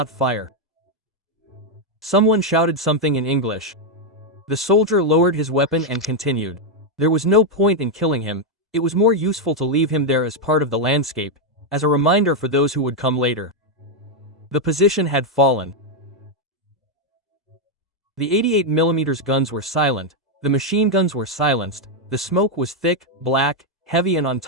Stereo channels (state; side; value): normal; both; correlation 0.01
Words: fire. Someone shouted something in English. The soldier lowered his weapon and continued. There was no point in killing him, it was more useful to leave him there as part of the landscape, as a reminder for those who would come later. The position had fallen. The 88mm guns were silent, the machine guns were silenced, the smoke was thick, black, heavy, and on